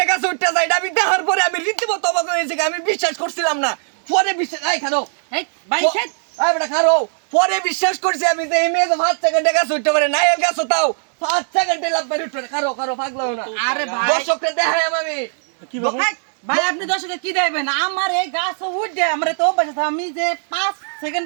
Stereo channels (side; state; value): left; silent; digital silence